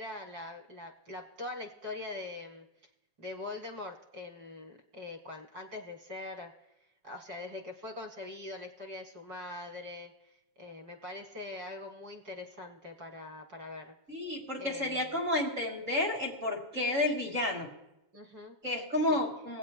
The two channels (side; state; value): left; late; 7.1 ms